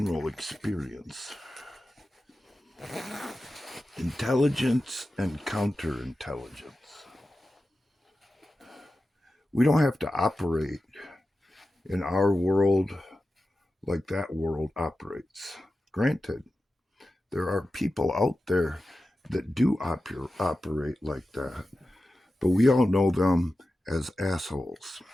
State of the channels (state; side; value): normal; both; correlation 0.93